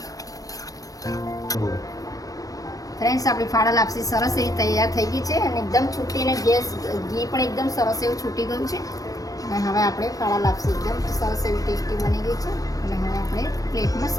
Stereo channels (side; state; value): right; late; 0.17 ms